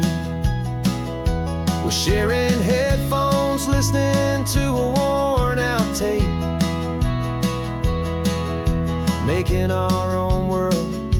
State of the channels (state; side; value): identical; both; correlation 1.00